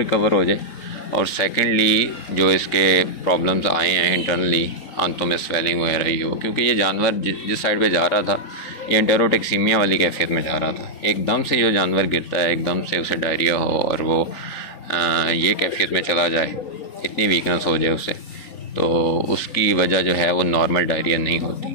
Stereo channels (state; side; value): late; right; 3.9 ms